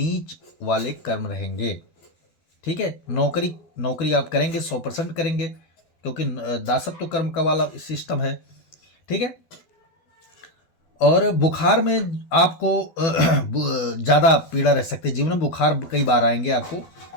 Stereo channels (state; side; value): late; right; 12 ms